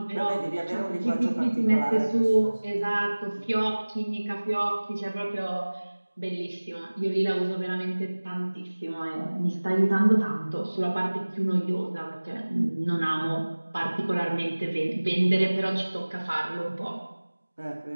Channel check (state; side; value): inverted; both; correlation -1.00